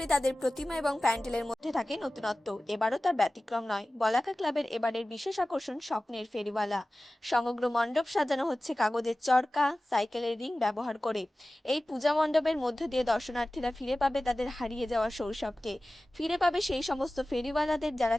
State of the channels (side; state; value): both; normal; correlation 0.96